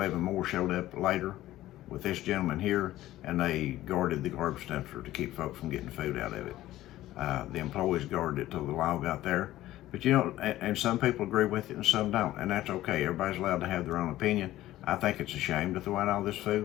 more showed up later with this gentleman here, and they guarded the garbage dumpster to keep folks from getting food out of it. The employees guarded it till the law got there. But you know, and some people agree with it and some don't, and that's okay. Everybody's allowed to have their own opinion. I think it's a shame to throw out all this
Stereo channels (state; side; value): quieter; right; 15.0 dB